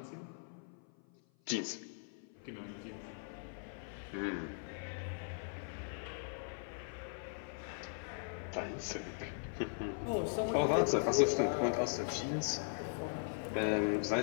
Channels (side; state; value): right; silent; 52 dB below the other